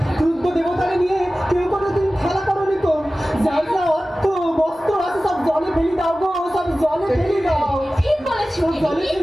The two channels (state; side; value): normal; both; correlation 0.96